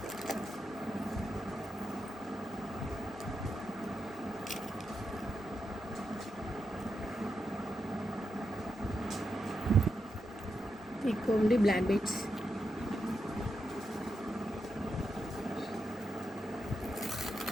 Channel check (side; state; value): both; normal; correlation 0.86